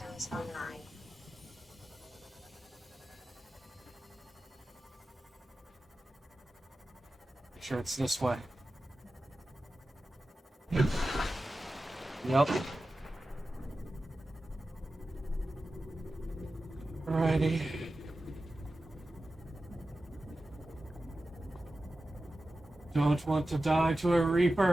online. Make sure it's this way. Yep. Alrighty. Don't want to die to a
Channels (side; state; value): both; normal; correlation 0.94